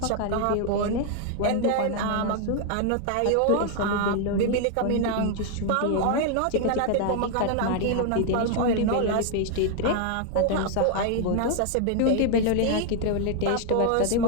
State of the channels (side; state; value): both; different; correlation 0.00